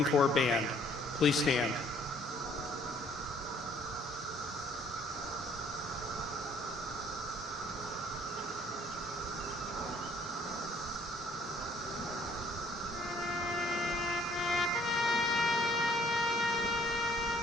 Corps Band. Please stand.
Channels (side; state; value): both; normal; correlation 0.61